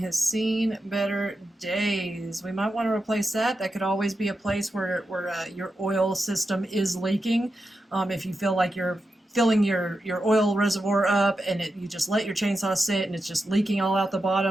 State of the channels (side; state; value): both; normal; correlation 0.89